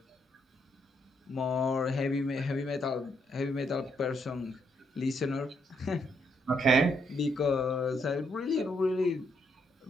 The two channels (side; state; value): both; normal; correlation 0.75